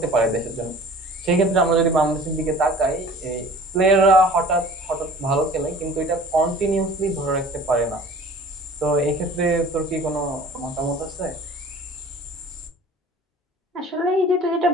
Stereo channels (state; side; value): normal; both; correlation 0.46